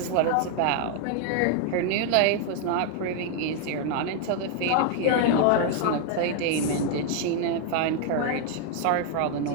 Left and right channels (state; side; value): different; both; correlation 0.00